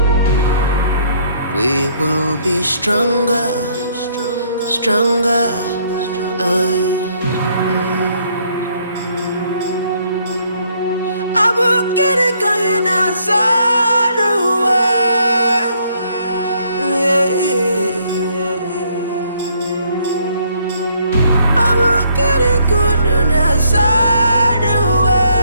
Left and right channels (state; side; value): inverted; both; correlation -0.67